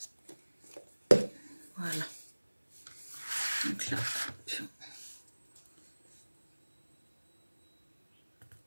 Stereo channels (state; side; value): inverted; both; correlation -1.00